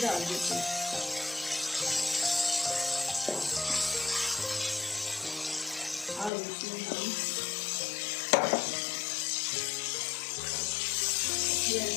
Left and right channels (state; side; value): drops out; right; at 6.3 s